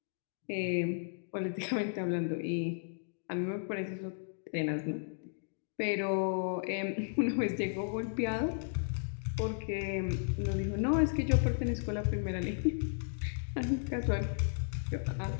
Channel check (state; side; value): silent; right; digital silence